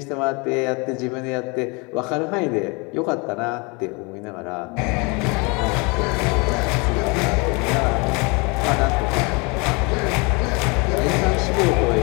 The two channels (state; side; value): quieter; right; 29.4 dB